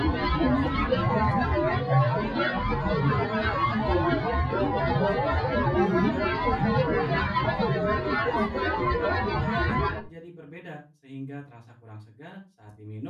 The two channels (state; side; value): identical; both; correlation 1.00